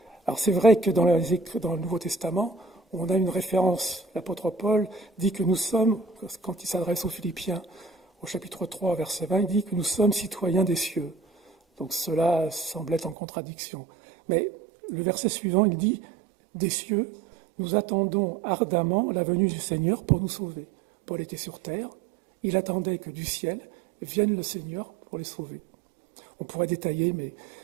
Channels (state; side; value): drops out; left; at 13.2 s